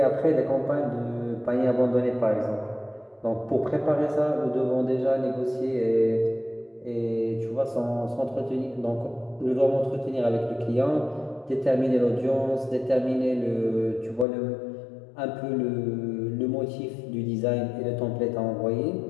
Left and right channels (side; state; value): right; drops out; at 14.2 s